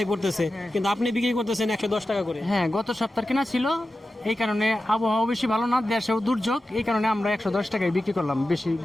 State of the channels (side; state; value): both; normal; correlation 0.93